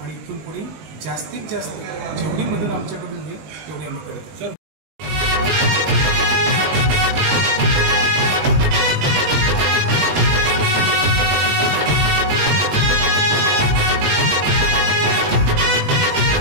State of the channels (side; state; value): left; late; 20 ms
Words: आणि इथून पुढे जास्तीत जास्त जेवढी मदत आमच्याकडून होईल तेवढी आम्ही करतो.